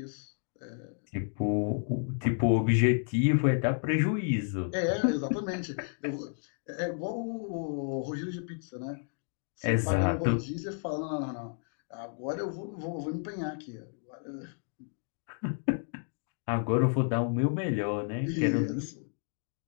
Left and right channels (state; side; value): silent; right; 57 dB below the other